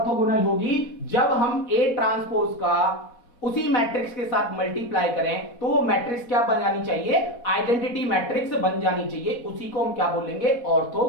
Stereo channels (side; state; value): right; late; 4.1 ms